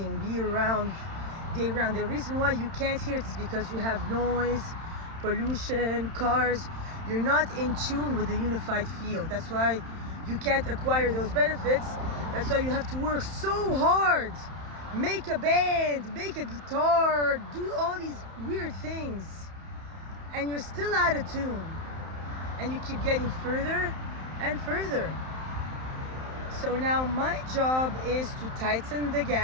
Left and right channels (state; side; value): late; left; 31 ms